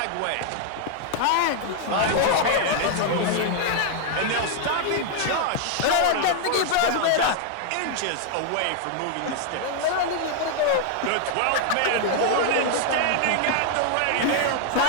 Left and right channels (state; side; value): different; both; correlation 0.00